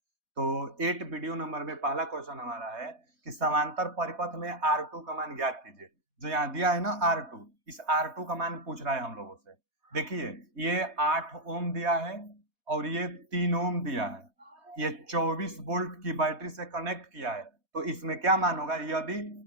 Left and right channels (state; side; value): late; left; 4.1 ms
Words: तो 8 वीडियो नंबर में पहला क्वेश्चन हमारा है कि समांतर परिपथ में R2 का मान ज्ञात कीजिए। जो यहाँ दिया है ना R2, इस R2 का मान पूछ रहा है हम लोगों से। देखिए ये 8 ओम दिया है और ये 3 ओम दिया है। ये 24 वोल्ट की बैटरी से कनेक्ट किया है, तो इसमें क्या मान होगा यदि